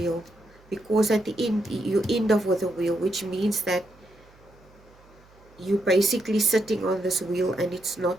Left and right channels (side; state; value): right; noise; hum, 28 dB below the sound